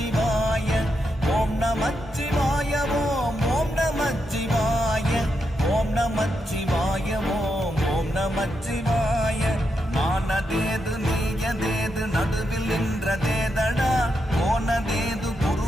ஓம் நமச்சிவாய ஓம் ஓம் நமச்சிவாய ஓம் நமச்சிவாய ஓம் ஓம் நமச்சிவாய. நானதேது நீயதேது நடுவில் நின்றதேதடா போனதேது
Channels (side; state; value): both; normal; correlation 0.84